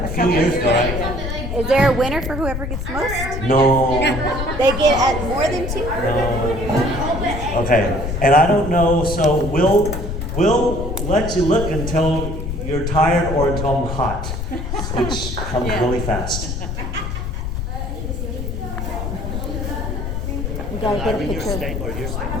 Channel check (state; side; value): noise; left; rumble, 4 dB below the sound